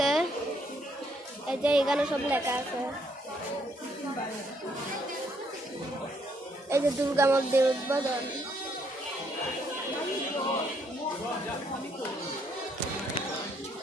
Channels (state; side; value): normal; both; correlation 0.71